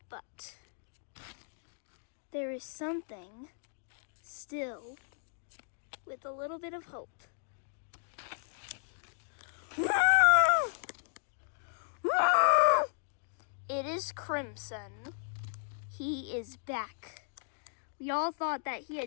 But there is something still with a little bit of hope. It is Crimson. He is back. We all thought that he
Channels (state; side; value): silent; right; digital silence